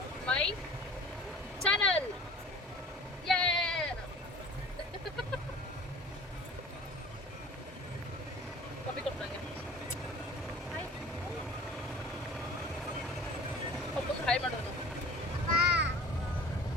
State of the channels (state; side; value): normal; both; correlation 0.44